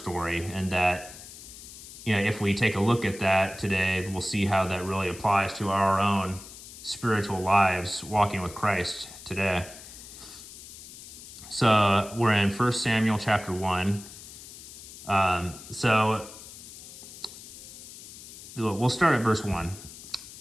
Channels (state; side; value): noise; left; hiss, 15 dB below the sound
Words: and that, if we take a look at that today, we'll see how that really applies to our own spiritual lives walking with Christ today. So we're in 1 Samuel chapter 1. So we'll start at verse 1.